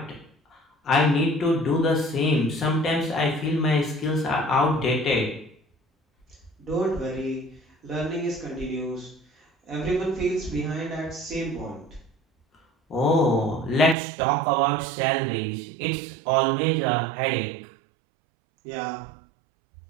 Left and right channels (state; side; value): drops out; left; at 14.0 s